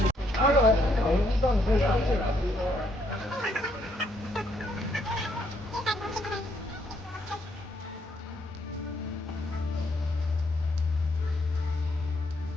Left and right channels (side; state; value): both; normal; correlation 0.72